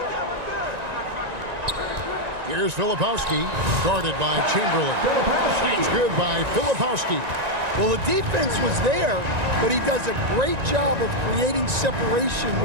Here's Filipowski, guarded by Chamberlain. That's good by Filipowski. Well, the defense was there, but he does a great job of creating separation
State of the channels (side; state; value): left; late; 1.9 ms